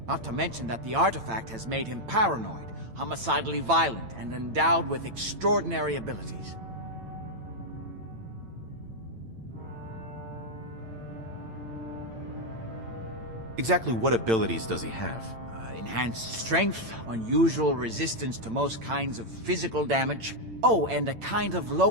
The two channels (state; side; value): late; left; 8.9 ms